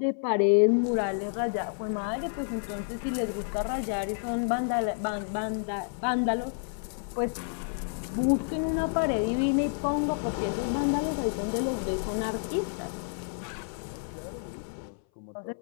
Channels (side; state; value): right; silent; 58 dB below the other